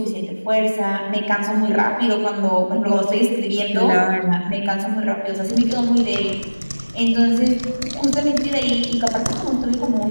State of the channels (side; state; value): both; inverted; correlation -1.00